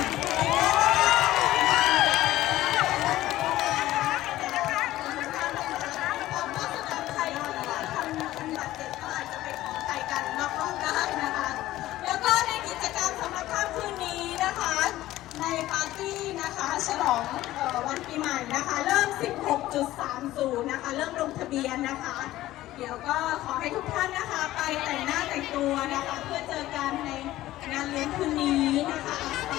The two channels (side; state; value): right; quieter; 15.5 dB